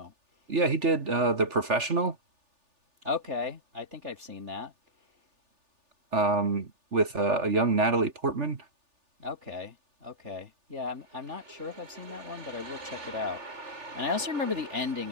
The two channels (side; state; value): left; late; 3.4 ms